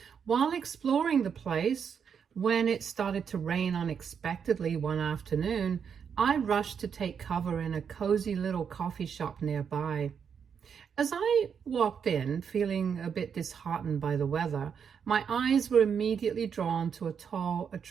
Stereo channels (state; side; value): quieter; left; 7.1 dB